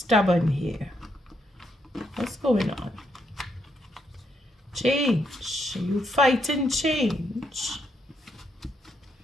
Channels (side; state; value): both; normal; correlation 0.76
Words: here. What's going on? Change. Are you fighting change?